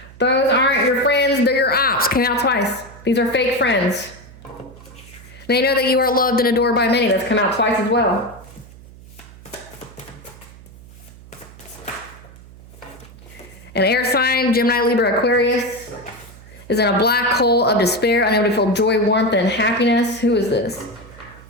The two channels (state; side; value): noise; right; hum, 20 dB below the sound